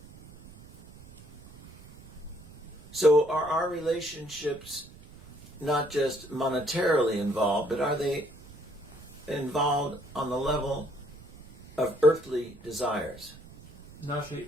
So are our relationships not just monetarily involved, but are they involved on the level of earthly desires? Наши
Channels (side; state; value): right; noise; rumble, 20 dB below the sound